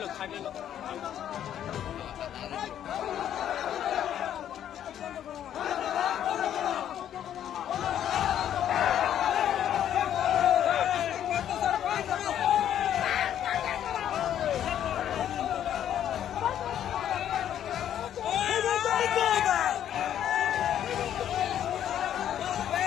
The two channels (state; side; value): quieter; right; 10.4 dB